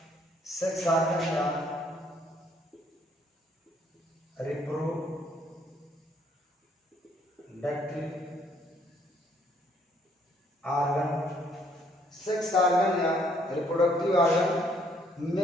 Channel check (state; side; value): normal; both; correlation 0.66